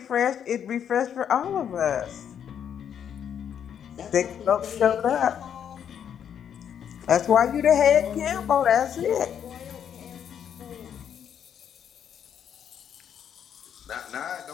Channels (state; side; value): quieter; right; 8.7 dB